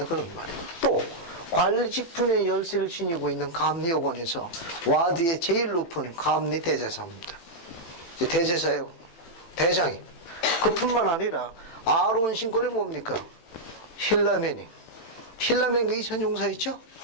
그런 말이에요. 또 관리 직분의 열쇠를 지니고 있는 감리요원에서 와드의 제일 높은 감리 대제사입니다. 대제사예요. 대장이. 그뿐만 아니라 아론 신권이 뭡니까? 힐라멘이. 힐라멘과 이천용사 있죠?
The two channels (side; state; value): right; late; 18 ms